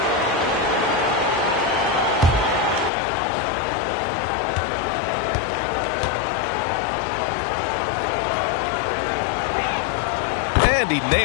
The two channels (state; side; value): drops out; right; at 2.9 s